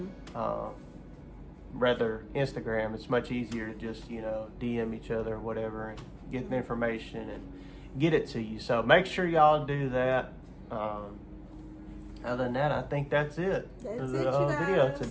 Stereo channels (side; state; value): both; identical; correlation 1.00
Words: Rather Instagram, it's much easier to just, you know, DM each other or whatever and get the information and get it to you. So make sure y'all do that. Other than that, I think that's it. That's for the it, you guys. video